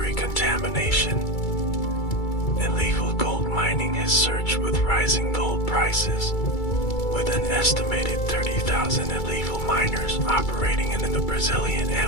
contamination. Illegal gold mining has surged with rising gold prices, with an estimated 30,000 illegal miners operating in the Brazilian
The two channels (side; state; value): right; late; 2.3 ms